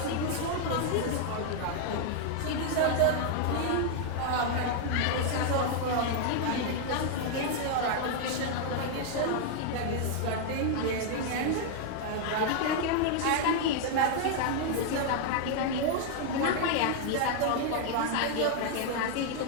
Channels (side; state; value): both; different; correlation 0.00